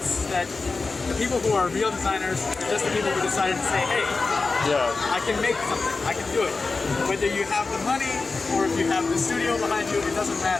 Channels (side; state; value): right; quieter; 4.0 dB